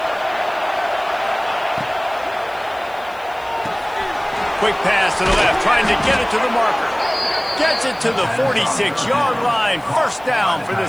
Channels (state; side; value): noise; left; hiss, 26 dB below the sound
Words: Quick pass to the left, trying to get it to the marker. Gets it to the 46-yard line. First down for